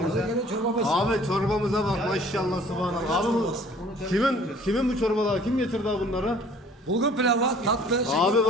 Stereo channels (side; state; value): both; normal; correlation 0.53